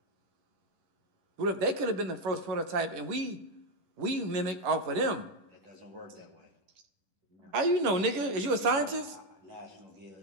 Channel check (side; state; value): left; late; 11 ms